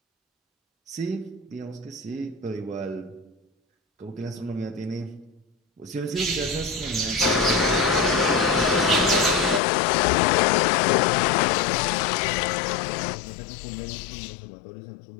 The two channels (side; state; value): right; drops out; at 9.6 s